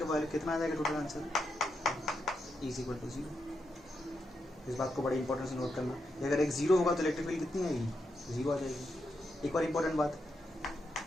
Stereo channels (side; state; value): both; normal; correlation 0.83